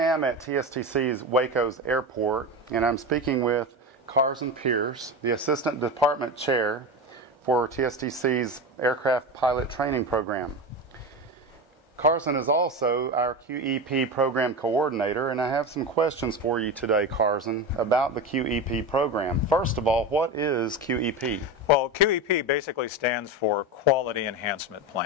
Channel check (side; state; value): right; late; 1.3 ms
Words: at TSTC's Waco's airport, and I'm speaking with Carson Pierce, the Assistant Department Chair for TSTC's Aircraft Pilot Training Program. Carson is also our QEP Program Coordinator, and I have some questions for you today, Carson, about the QEP program. First of all, what is QEP? Well, QEP basically stands for Quality Enhancement